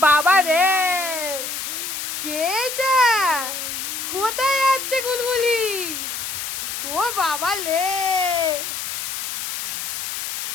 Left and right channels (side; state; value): left; noise; hiss, 5 dB below the sound